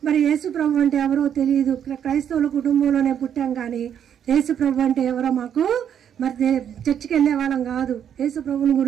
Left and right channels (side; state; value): left; quieter; 9.0 dB